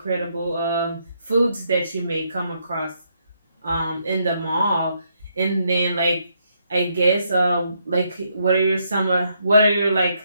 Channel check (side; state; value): both; inverted; correlation -0.76